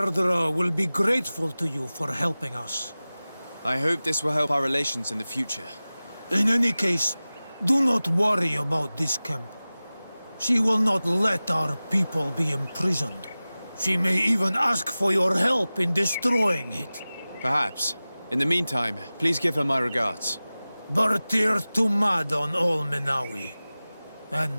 will be grateful to you for helping us. I hope this will help our relations in the future. In any case, do not worry about this camp. She will not let our people be imprisoned. She may even ask for your help in destroying it. Perhaps. In the meantime, please give her my regards. Bartir Tumad on Olmenawi.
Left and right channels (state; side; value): inverted; both; correlation -0.97